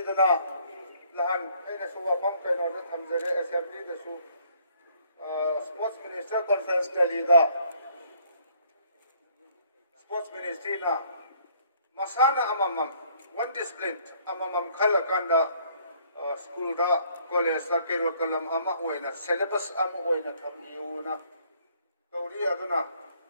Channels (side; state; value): both; inverted; correlation -0.63